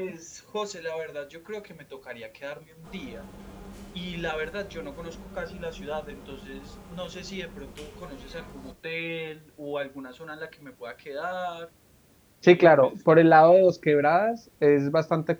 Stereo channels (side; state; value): both; identical; correlation 1.00